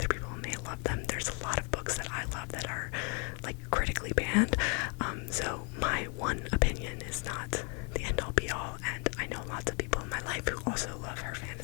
people may love them. There's a lot of books that I love that are critically banned. So my one opinion is not the end all be all, and I know lots of people in my life who also love her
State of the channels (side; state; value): right; quieter; 34.6 dB